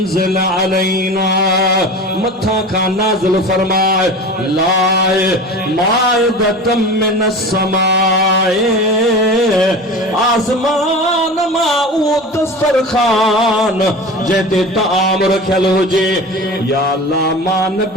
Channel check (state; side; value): normal; both; correlation 0.33